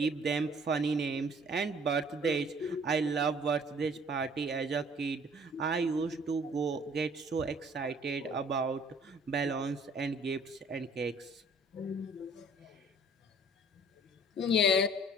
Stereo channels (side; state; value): both; normal; correlation 0.55